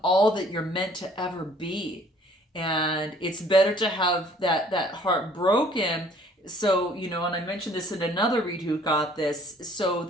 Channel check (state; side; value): normal; both; correlation 0.57